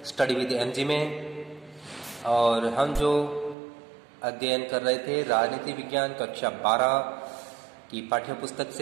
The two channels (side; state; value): left; drops out; at 3.6 s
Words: study with MG में। और हम जो अध्ययन कर रहे थे राजनीति विज्ञान कक्षा 12 की पाठ्य पुस्तक